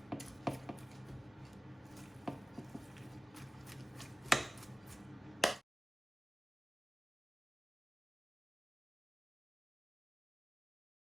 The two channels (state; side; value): normal; both; correlation 0.96